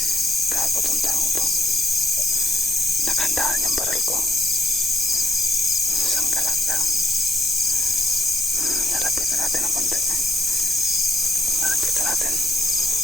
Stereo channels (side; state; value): both; normal; correlation 0.71